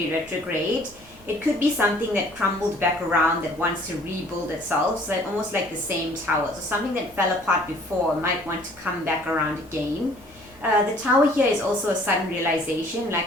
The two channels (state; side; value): normal; both; correlation 0.55